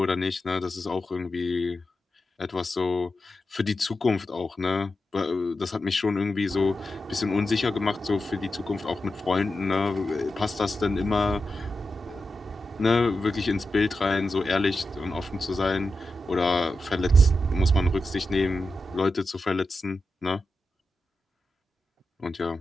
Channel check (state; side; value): normal; both; correlation 0.90